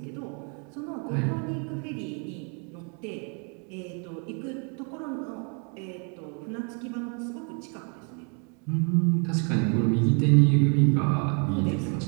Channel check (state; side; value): quieter; left; 38.0 dB